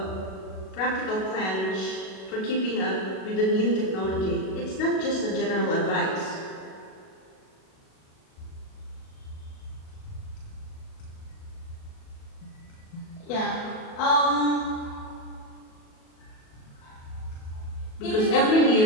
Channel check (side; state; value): right; late; 37 ms